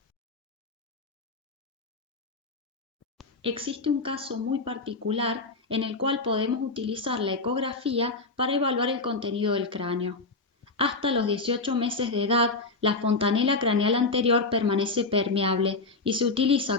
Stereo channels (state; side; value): quieter; right; 3.7 dB